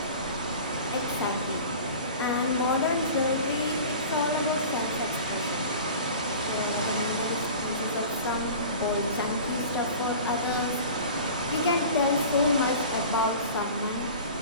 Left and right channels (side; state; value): both; inverted; correlation -0.39